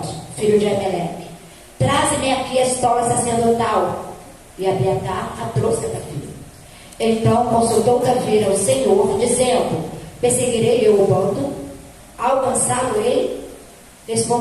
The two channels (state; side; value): identical; both; correlation 1.00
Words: filho de Ameleque: traze-me aqui a estola sacerdotal. E Abiatar a trouxe a Davi. Então consultou Davi ao Senhor, dizendo: perseguirei eu o bando? Alcançá-lo-ei?